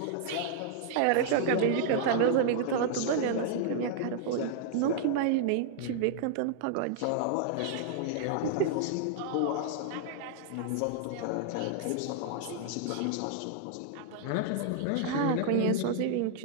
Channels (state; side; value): different; both; correlation -0.01